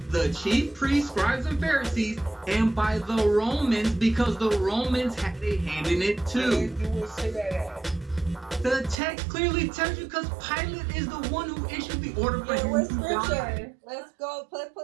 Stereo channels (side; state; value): left; drops out; at 9.0 s